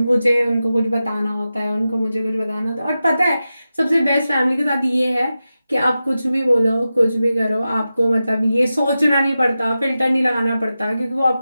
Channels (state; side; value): inverted; both; correlation -0.92